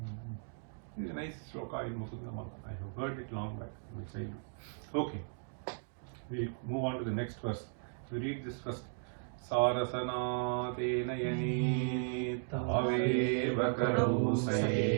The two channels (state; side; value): silent; left; digital silence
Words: This is a nice sloka in Mukunda Mala. I have heard it long back in my childhood. Okay. We'll move on to the next verse. We read this first. Sarasana tenayani taveva karau